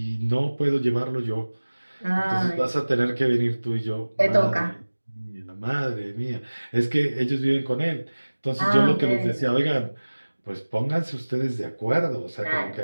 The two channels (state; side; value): inverted; both; correlation -1.00